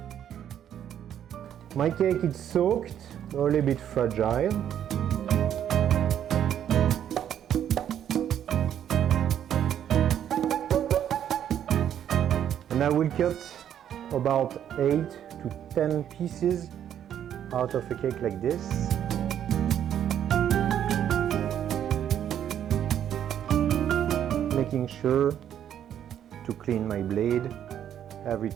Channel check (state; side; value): quieter; left; 9.9 dB